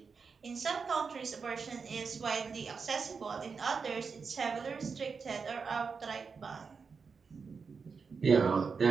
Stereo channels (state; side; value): quieter; left; 5.3 dB